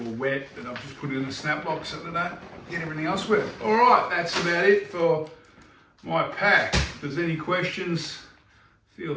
were wet that I've just put in a snap lock so that I don't get everything else wet. All right, that's about it for my pack. If there's any questions, feel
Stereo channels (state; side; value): identical; both; correlation 1.00